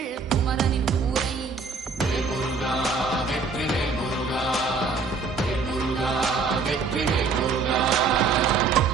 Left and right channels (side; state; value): left; quieter; 4.5 dB